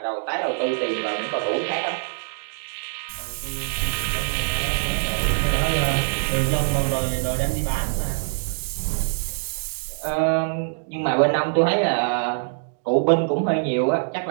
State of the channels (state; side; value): silent; left; digital silence